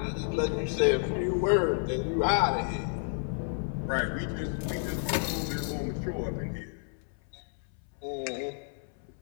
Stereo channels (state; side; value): silent; right; 57 dB below the other